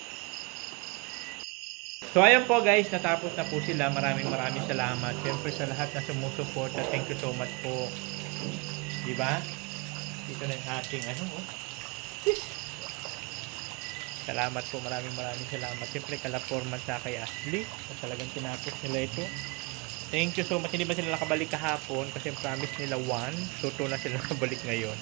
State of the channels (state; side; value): quieter; left; 28.0 dB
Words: So ayan po guys, natapos na po sila. Maraming salamat. Siyempre sa lahat na sumusuporta, thank you so much po. Di ba? Dito na yung ating Salamat po, maraming salamat. Siyempre kala Foreman sa kay Ashley, at talagang tinapos nila ito. Thank you so much. Hindi ba sila nakabalik kahapon kasi promise nila 1, so 2 na sila nakabalik ngayon.